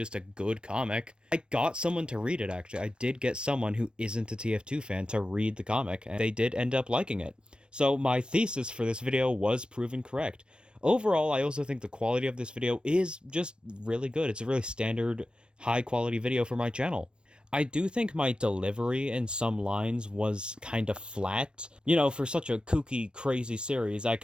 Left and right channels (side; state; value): left; late; 0.055 ms